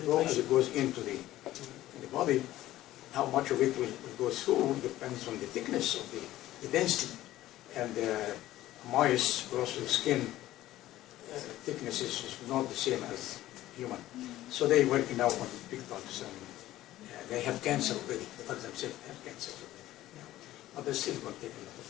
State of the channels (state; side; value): quieter; right; 15.0 dB